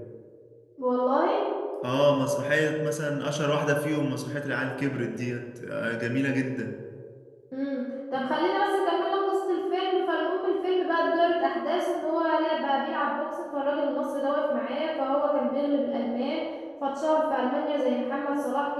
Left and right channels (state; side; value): identical; both; correlation 1.00